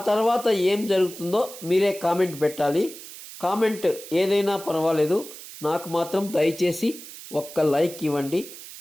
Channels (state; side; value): noise; right; hiss, 14 dB below the sound